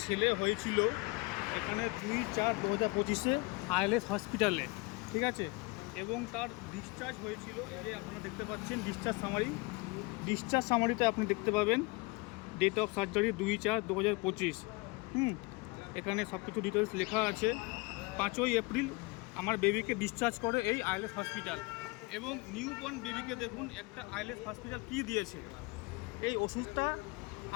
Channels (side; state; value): right; quieter; 26.3 dB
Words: ছেলে হয়েছিল এখানে 2/4/2025 আইএলএস হসপিটালে, ঠিক আছে। এবং তার ডিসচার্জ হয়েছিল, এই যে আপনারা দেখতে পাচ্ছেন ডিসচার্জ সামারিতে আপনি দেখতে পাবেন ডেট অফ সার্জারি 2/4/2025। এখানে সব কিছু ডিটেলস লেখা আছে। 5ই এপ্রিল আমার বেবিকে ডিসচার্জ করে এই আইএলএস হসপিটাল। এবং নিউবর্ন বেবিকে দেখুন একটা আইএলএস হসপিটাল কী দিয়েছে। এই ওষুধটা